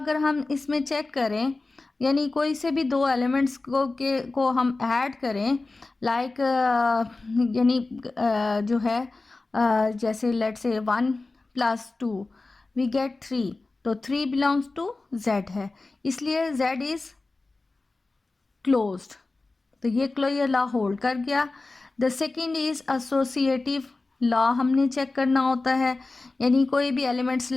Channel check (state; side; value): quieter; right; 3.4 dB